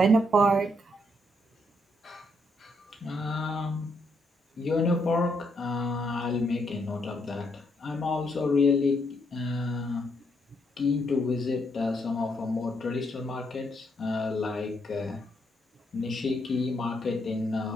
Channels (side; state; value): both; normal; correlation 0.76